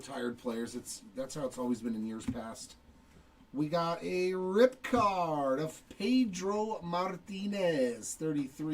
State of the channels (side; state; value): both; identical; correlation 1.00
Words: players. That's how it's always been in years past. We got a rip card of Pedro Martinez,